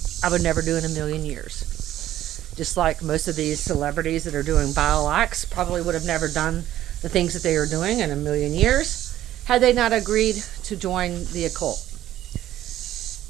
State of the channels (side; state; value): left; quieter; 13.0 dB